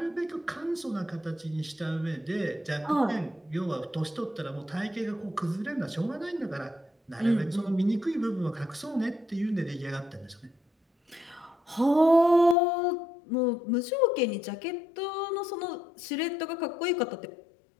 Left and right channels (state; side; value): drops out; right; at 12.6 s